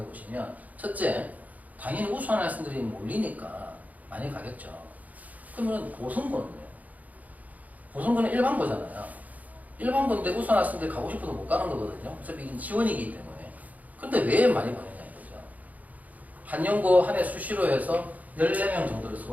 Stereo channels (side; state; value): left; late; 0.077 ms